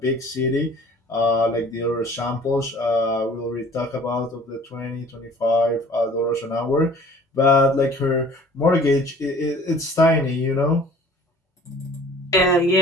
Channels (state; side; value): normal; both; correlation 0.49